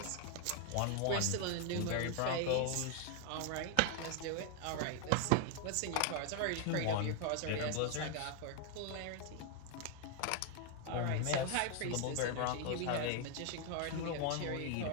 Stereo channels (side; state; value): both; different; correlation 0.00